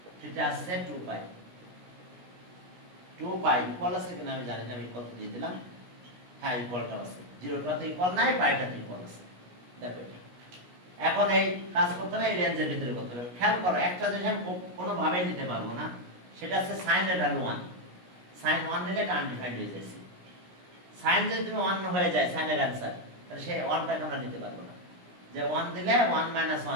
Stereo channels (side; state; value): left; late; 17 ms